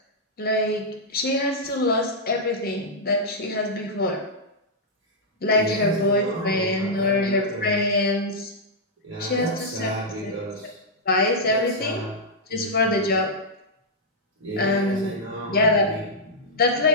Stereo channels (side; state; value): both; normal; correlation -0.08